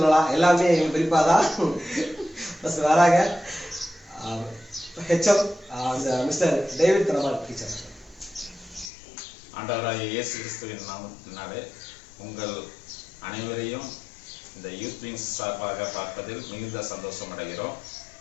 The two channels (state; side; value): drops out; right; at 8.9 s